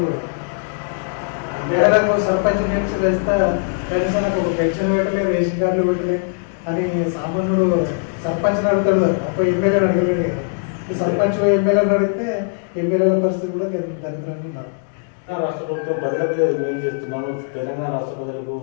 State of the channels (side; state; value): right; silent; digital silence